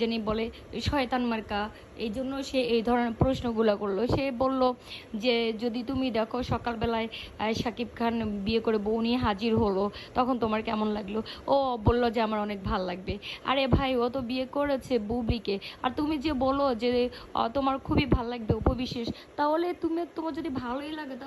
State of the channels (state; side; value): identical; both; correlation 1.00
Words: বলে, শয়তান মার্কা। এই জন্য সে এই ধরনের প্রশ্নগুলো করলো। সে বলল যে যদি তুমি দেখো সকালবেলায় শাকিব খান বিয়ে করে বউ নিয়ে হাজির হলো, তখন তোমার কেমন লাগলো? ও বলল যে আমার অনেক ভাল লাগবে। আরে ভাই, ও তো বিয়ে করেছে বুবলিকে। আর তুমি যে বলো যে তোমার খুবই ভাল লাগবে উপবিশেষ, তাহলে তোমার যদি ভালোই লাগে,